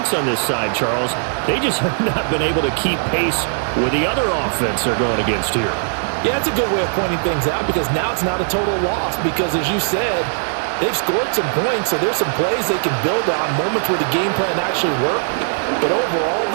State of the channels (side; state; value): left; silent; 66 dB below the other